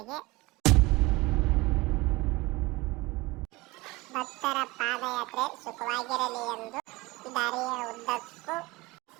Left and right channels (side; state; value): left; quieter; 21.9 dB